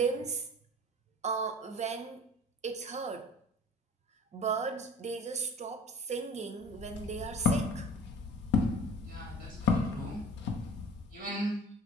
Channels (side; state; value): both; normal; correlation 0.42